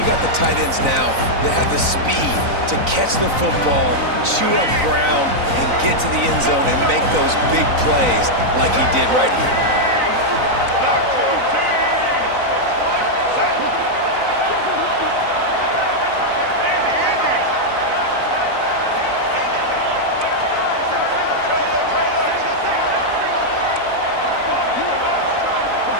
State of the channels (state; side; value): late; left; 3.9 ms